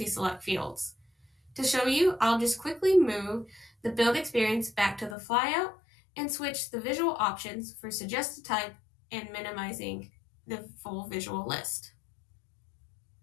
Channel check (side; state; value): right; drops out; at 5.2 s